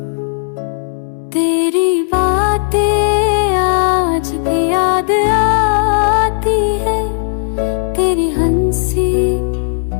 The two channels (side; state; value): right; silent; digital silence